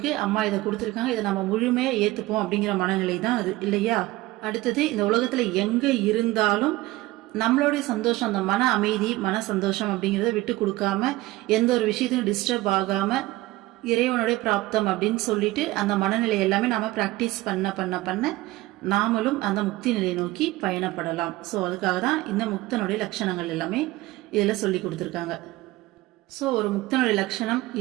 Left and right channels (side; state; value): left; quieter; 18.5 dB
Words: அம்மா இதை கொடுத்துருக்காங்க, இதை நம்ம முழுமையா ஏத்துப்போம் அப்படிங்கிற மனநிலை தான் அது இல்லையா. அடுத்தது இந்த உலகத்துல எங்க இருந்தாலும் நம்மளுடைய சந்தோஷம், அந்த மன அமைதி, மன சந்தோஷம் அப்படிங்கிறத விட்டு கொடுக்காம, எந்த ஒரு விஷயத்தையும் டிஸ்டர்ப் ஆகாம இறைவனுடைய பிராப்தம் அப்படின்னு சொல்லிட்டு அந்த மனநிலை எல்லாமே நாம பிராக்டிஸ் பண்ண நாமளும் அந்த முக்தி நிலையை நோக்கி பயணப்படலாம். ஸோ அதுக்காக தான் இந்த முக்தனுடைய லட்சணங்கள் எல்லாமே இதில் சொல்லி கொடுத்துருக்காங்க. ஸோ ஒரு முக்தனுடைய லட்சணம்